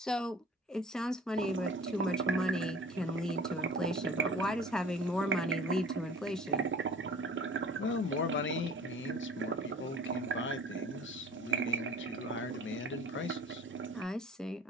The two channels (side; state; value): both; normal; correlation 0.45